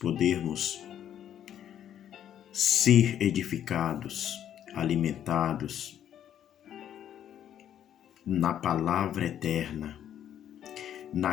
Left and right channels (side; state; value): right; quieter; 10.3 dB